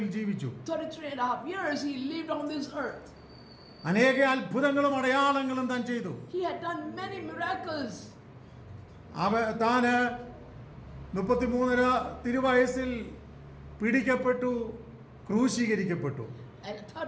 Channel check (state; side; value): identical; both; correlation 1.00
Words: ജീവിച്ചു. 33.5 years he lived on this earth. അനേക അത്ഭുതങ്ങളും അടയാളങ്ങളും താൻ ചെയ്തു. He had done many miracles. താന് 33.5 തിരുവയസ്സിൽ പിടിക്കപ്പെട്ടു, ക്രൂശീകരിക്കപ്പെട്ടു. At